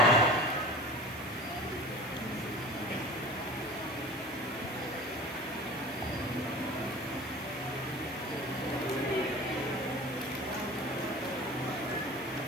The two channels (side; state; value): right; noise; hiss, 22 dB below the sound